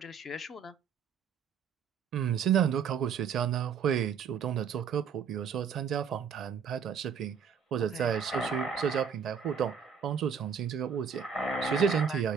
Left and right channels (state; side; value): quieter; left; 6.9 dB